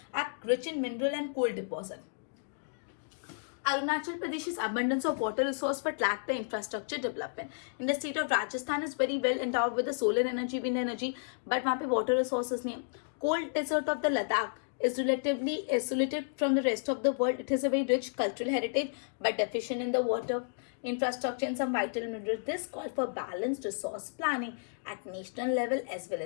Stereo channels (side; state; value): right; silent; digital silence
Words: are rich in mineral and coal deposit. Arunachal Pradesh is abundance of water resource but lack the infrastructure development. In the state of Rajasthan is very well endowed with the solar energy, wind energy, but वहाँ पे water resources नहीं है. Cold desert of the Ladakh is relatively isolated from the rest of the world. It has a very rich cultural heritage but deficient in the water infrastructure and some vital minerals. This calls for balanced resource planning at national level as